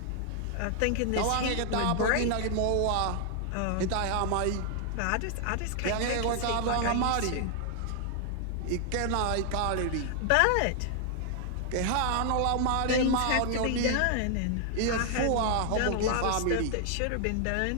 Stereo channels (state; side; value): different; both; correlation 0.00